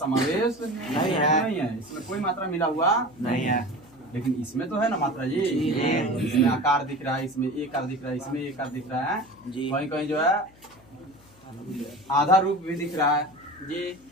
नहीं है, इसमें कोई मात्रा मिला हुआ नहीं है। लेकिन इसमें तो है ना मात्रा जी, इसमें आकार दिख रहा है, इसमें एक आकार दिख रहा है, इसमें एक आकार दिख रहा है, कहीं कहीं जो है आधा रूप भी दिख रहा है जी।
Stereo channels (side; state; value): left; noise; hum, 27 dB below the sound